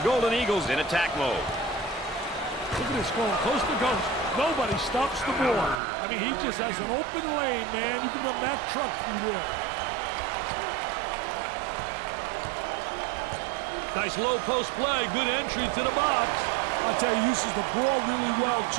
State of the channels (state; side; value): drops out; left; at 5.8 s